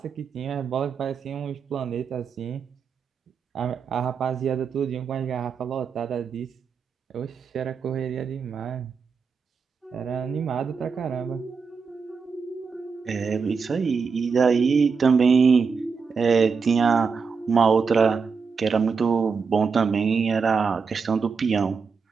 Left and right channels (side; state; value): left; quieter; 5.5 dB